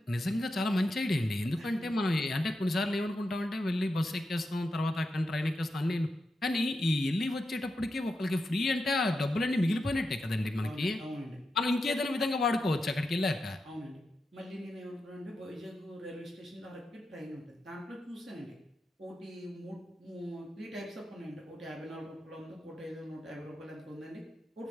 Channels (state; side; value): normal; both; correlation 0.88